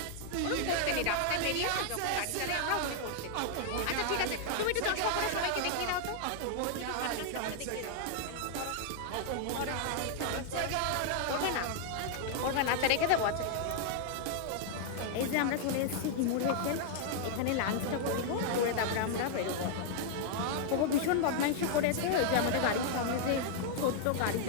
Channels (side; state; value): both; different; correlation 0.00